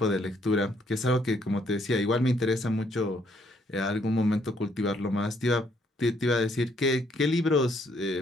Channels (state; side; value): normal; both; correlation 0.69